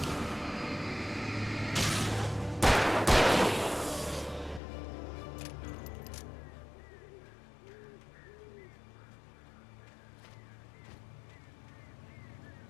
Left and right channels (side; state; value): right; drops out; at 4.6 s